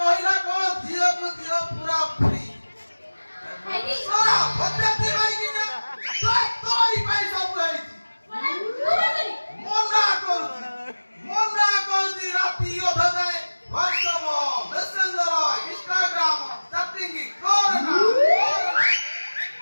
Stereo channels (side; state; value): both; inverted; correlation -1.00